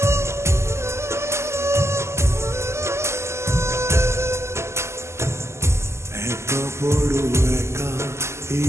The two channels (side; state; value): left; late; 0.13 ms